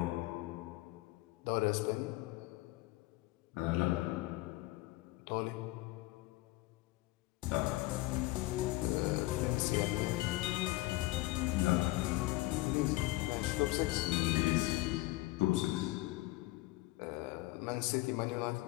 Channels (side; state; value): right; quieter; 19.6 dB